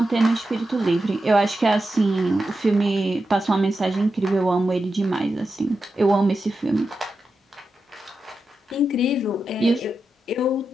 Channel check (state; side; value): normal; both; correlation 0.89